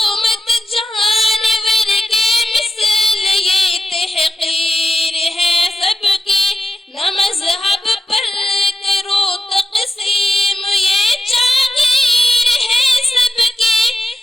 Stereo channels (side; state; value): both; normal; correlation 0.89